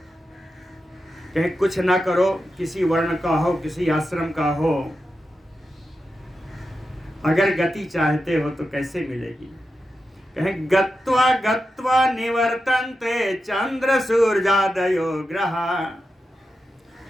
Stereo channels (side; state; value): both; normal; correlation 0.90